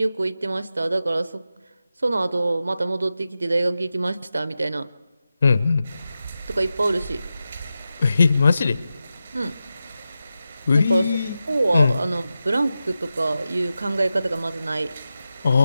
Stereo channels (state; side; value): inverted; both; correlation -0.91